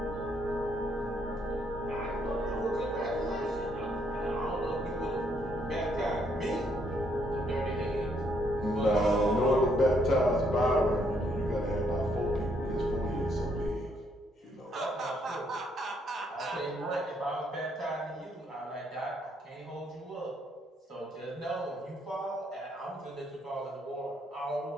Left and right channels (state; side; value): normal; both; correlation 0.71